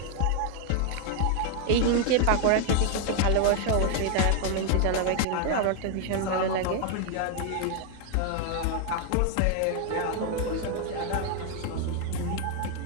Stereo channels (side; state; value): both; different; correlation 0.00